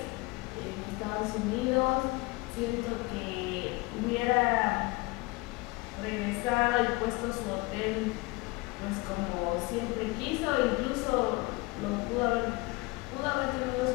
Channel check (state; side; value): quieter; right; 24.1 dB